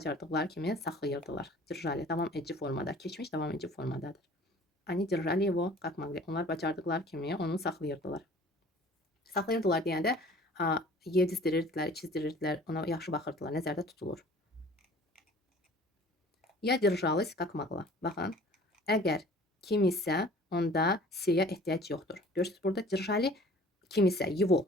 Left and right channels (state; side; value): normal; both; correlation 0.49